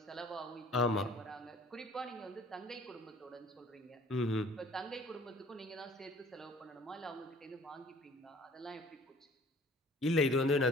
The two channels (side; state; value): both; normal; correlation 0.51